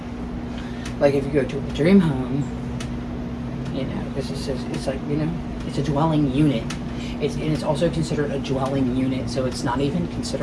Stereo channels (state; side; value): identical; both; correlation 1.00